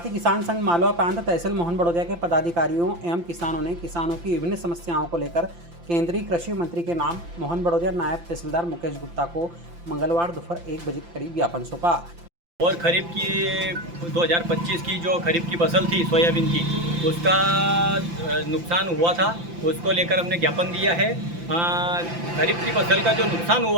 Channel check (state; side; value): late; left; 5.8 ms